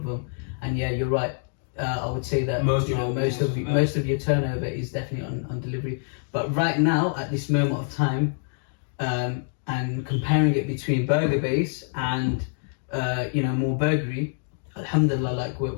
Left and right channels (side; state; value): right; silent; 61 dB below the other